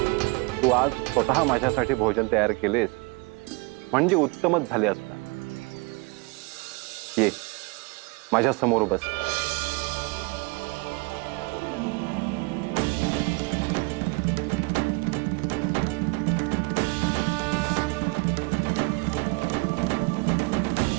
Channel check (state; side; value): quieter; left; 28.2 dB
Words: तू आज स्वतः माझ्यासाठी भोजन तयार केलेस म्हणजे उत्तमच झाले असणार. ये माझ्या समोर बस.